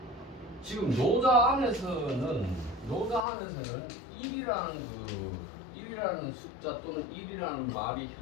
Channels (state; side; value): drops out; right; at 3.2 s